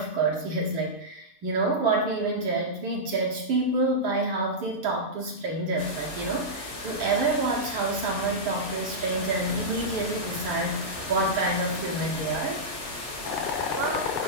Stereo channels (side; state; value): left; late; 8.4 ms